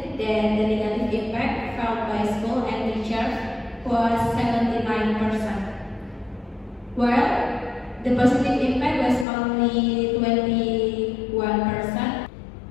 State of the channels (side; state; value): right; drops out; at 9.2 s